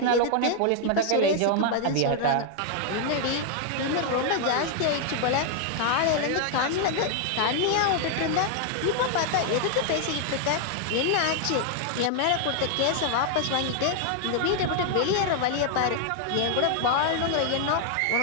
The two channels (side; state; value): both; different; correlation 0.00